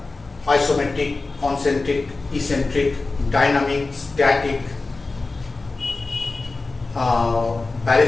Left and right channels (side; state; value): right; quieter; 3.6 dB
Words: isometric, concentric, eccentric, dynamic, static,